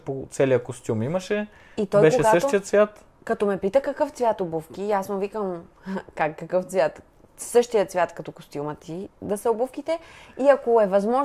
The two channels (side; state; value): both; identical; correlation 1.00